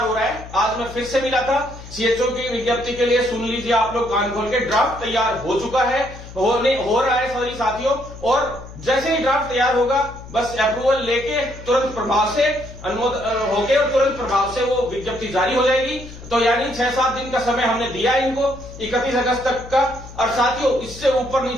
हो रहा है। आज मैं फिर से मिला था सीएचओ की विज्ञप्ति के लिए, सुन लीजिए आप लोग कान खोल के, ड्राफ्ट तैयार हो चुका है, हो रहा है सॉरी साथियों। और जैसे ही ड्राफ्ट तैयार होगा, बस अप्रूवल लेके तुरंत प्रभाव से अनुमोदन होके और तुरंत प्रभाव से वो विज्ञप्ति जारी हो जाएगी। तो यानी 6-7 दिन का समय हमने दिया इनको, 31 अगस्त तक का। और साथियों इससे ऊपर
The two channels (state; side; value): noise; left; hum, 15 dB below the sound